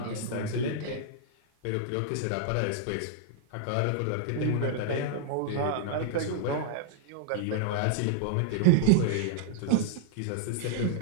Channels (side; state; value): both; different; correlation -0.01